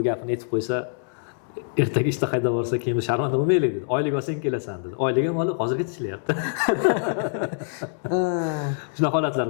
gapini aytib qo'ysa, ertaga ishda qayda borsa, keyin sharmanda bo'lmaylik dedi. Oylik olsang kelasan dedi. Oylik ham olib, hozirgacha ishlayapti. Shunaqa holatlar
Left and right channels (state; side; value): silent; right; 61 dB below the other